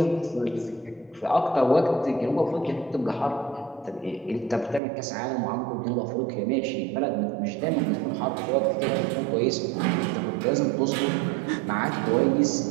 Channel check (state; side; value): drops out; left; at 4.8 s